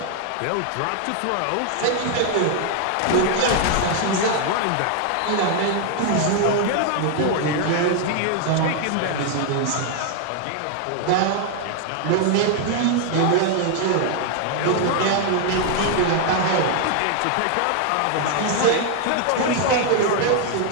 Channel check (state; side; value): different; both; correlation 0.00